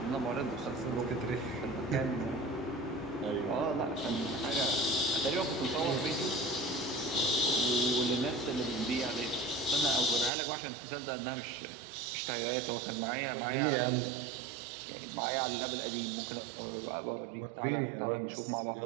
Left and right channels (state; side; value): drops out; left; at 10.3 s